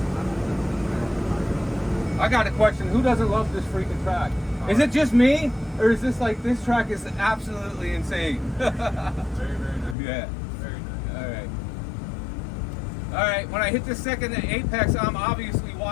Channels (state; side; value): drops out; right; at 10.0 s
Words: I got a question. Who doesn't love this freaking track? Is it just me? Or is this like, this track is absolutely insane? Very, very nice. Yeah. Very nice. All right, when I hit the second apex, I'm obviously